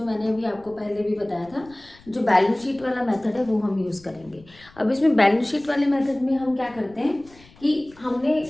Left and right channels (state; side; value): noise; left; rumble, 26 dB below the sound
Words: मैंने अभी आपको पहले भी बताया था, जो बैलेंस शीट वाला मेथड है वो हम यूज़ करेंगे। अब इसमें बैलेंस शीट वाले मेथड में हम क्या करते हैं कि हमने